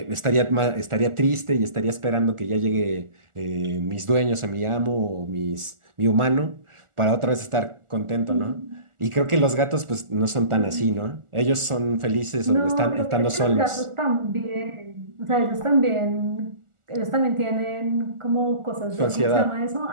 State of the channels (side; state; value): left; late; 1.4 ms